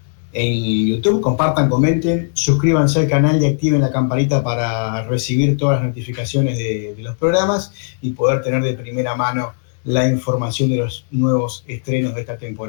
En YouTube, compartan, comenten, suscríbanse al canal y activen la campanita para recibir todas las notificaciones de los programas y poder tener de primera mano la información de los nuevos estrenos de esta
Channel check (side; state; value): right; silent; digital silence